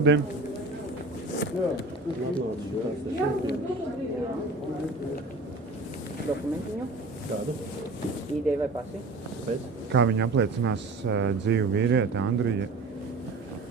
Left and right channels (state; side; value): quieter; left; 3.2 dB